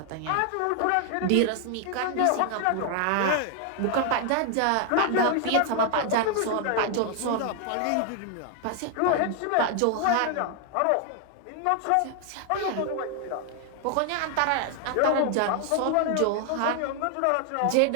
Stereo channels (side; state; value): both; different; correlation 0.00